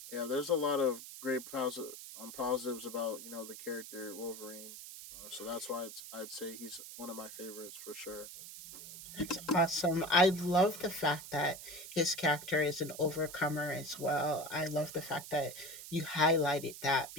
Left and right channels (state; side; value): noise; right; hiss, 12 dB below the sound